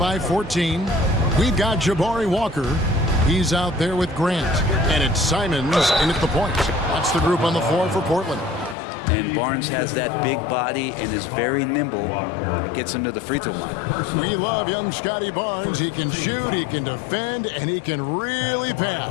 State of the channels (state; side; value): drops out; right; at 8.8 s